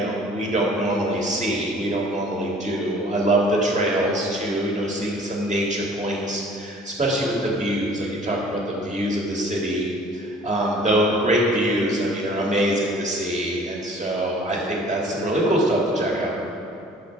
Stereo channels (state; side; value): normal; both; correlation 0.51